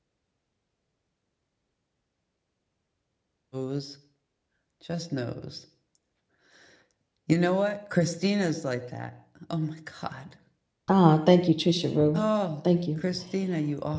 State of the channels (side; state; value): both; identical; correlation 1.00